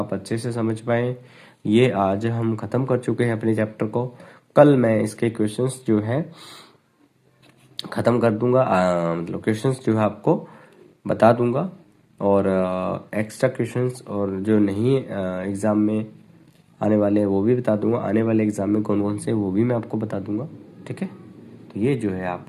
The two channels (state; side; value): identical; both; correlation 1.00